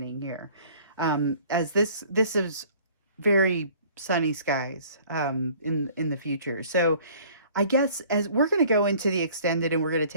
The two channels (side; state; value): both; inverted; correlation -0.52